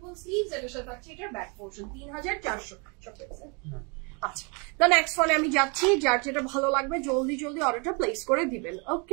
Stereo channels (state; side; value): quieter; left; 33.1 dB